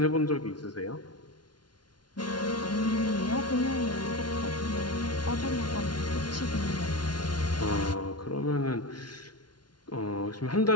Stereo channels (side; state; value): right; late; 0.70 ms